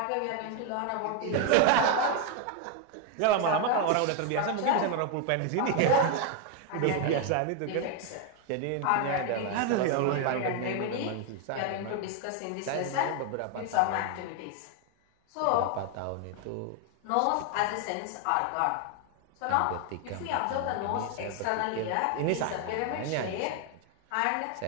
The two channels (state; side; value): different; both; correlation 0.01